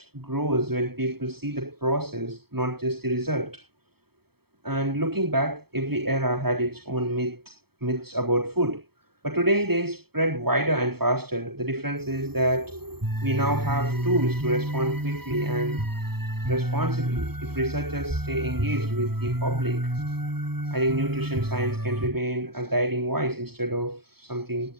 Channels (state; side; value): late; left; 0.96 ms